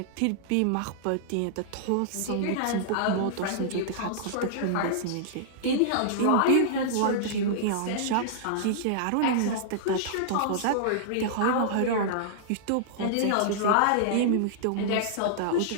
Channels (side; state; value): both; different; correlation -0.02